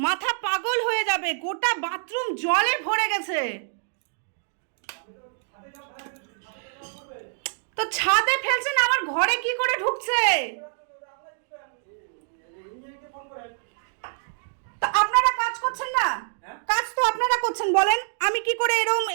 মাথা পাগল হয়ে যাবে, গোটা বাথরুম জলে ভরে গেছে। তো ছাদে ফেলছেন, আমার ঘরে কি করে ঢুকছে? তো আপনারা কাজ করছেন না? কাজ তো আপনারা করছেন, বলেন আমি কি করে এরম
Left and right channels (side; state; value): left; silent; digital silence